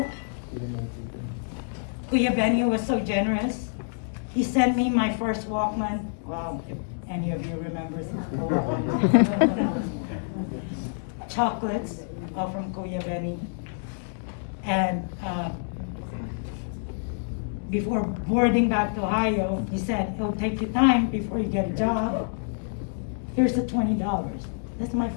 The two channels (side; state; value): right; silent; digital silence